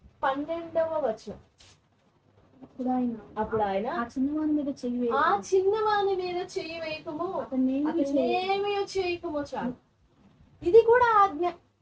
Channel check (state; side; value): identical; both; correlation 1.00